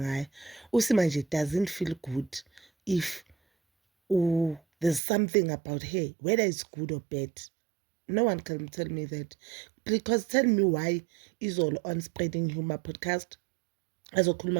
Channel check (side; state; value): left; drops out; at 5.0 s